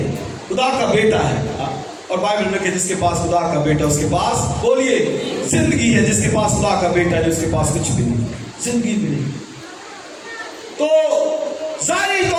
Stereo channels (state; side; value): identical; both; correlation 1.00